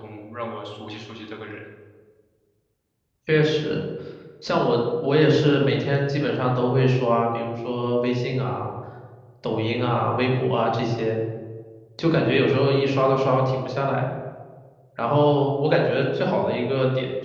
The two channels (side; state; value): both; identical; correlation 1.00